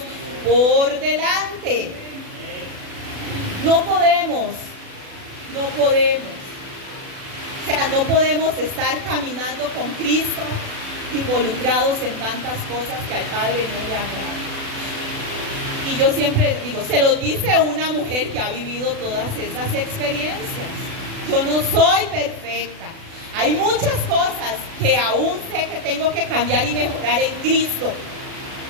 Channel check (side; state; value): left; late; 36 ms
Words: por delante. No podemos. O sea, no podemos estar caminando con Cristo involucrados en tantas cosas que al Padre no le agradan. Y yo siempre les digo, se lo dice una mujer que ha vivido todas esas experiencias. Yo no soy perfecta. Hay muchas cosas que aún sé que tengo que cambiar y mejorar en Cristo.